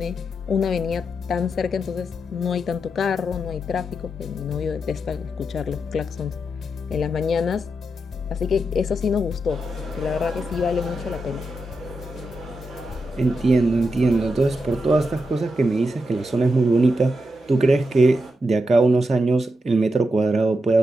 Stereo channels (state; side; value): normal; both; correlation 0.85